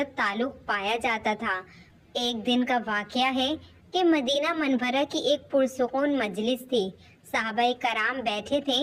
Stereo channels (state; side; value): identical; both; correlation 1.00